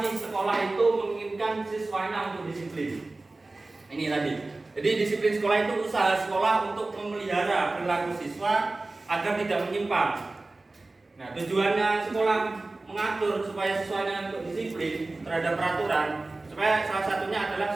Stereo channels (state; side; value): quieter; left; 3.2 dB